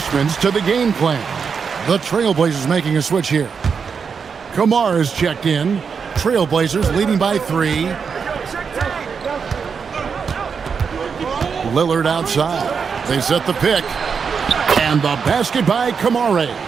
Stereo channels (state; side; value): quieter; left; 6.0 dB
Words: to the game plan. The Trailblazers making a switch here. Kamara is checked in. Trailblazers leading by 3. Lillard outside. They set the pick. And the basket by Kamara.